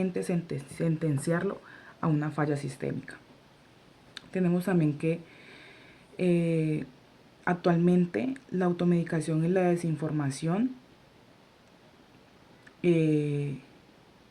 sentenciarlo a una falla sistémica. Tenemos también que actualmente la automedicación y la desinformación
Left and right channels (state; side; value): identical; both; correlation 1.00